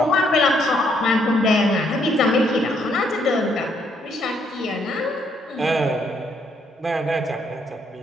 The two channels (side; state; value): both; normal; correlation 0.71